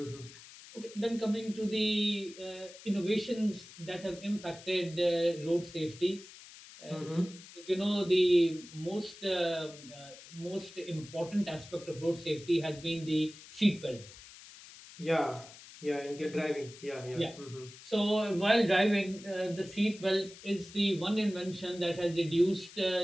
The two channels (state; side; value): noise; left; hiss, 18 dB below the sound